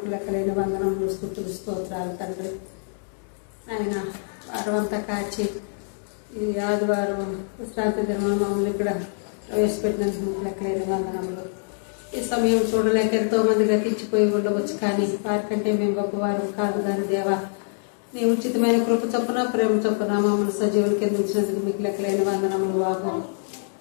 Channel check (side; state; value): right; silent; digital silence